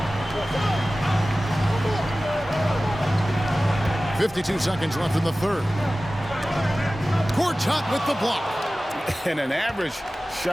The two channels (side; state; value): both; normal; correlation 0.96